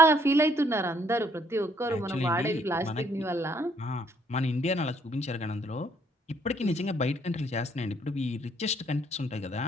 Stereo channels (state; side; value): normal; both; correlation 0.66